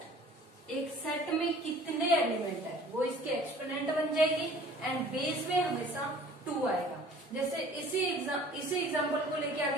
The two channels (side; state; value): both; normal; correlation 0.49